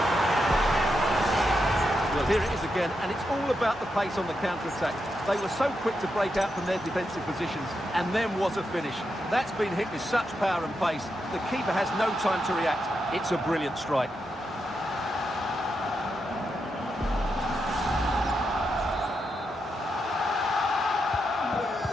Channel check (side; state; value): both; normal; correlation 0.85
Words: Well, here it is again, and it's all about the pace on the counter-attack. They were so quick to break out from their defensive positions, and then was a finish. That's been hit with such power and pace. The keeper has no time to react. It's a brilliant strike.